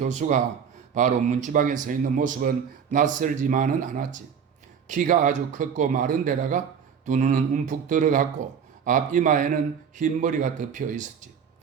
바로 문지방에 서 있는 모습은 낯설지만은 않았지. 키가 아주 컸고 마른 데다가 두 눈은 움푹 들어갔고 앞 이마에는 흰 머리가 덮여 있었지.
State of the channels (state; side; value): quieter; left; 7.2 dB